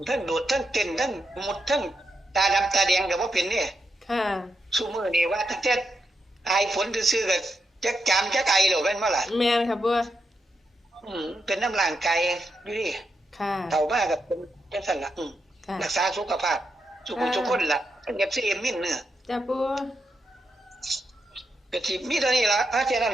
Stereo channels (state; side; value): normal; both; correlation 0.84